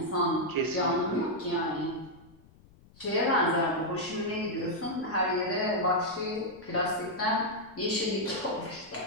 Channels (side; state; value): left; noise; rumble, 26 dB below the sound